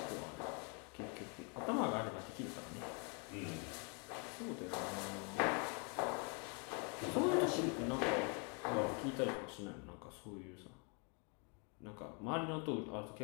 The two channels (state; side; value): quieter; right; 36.2 dB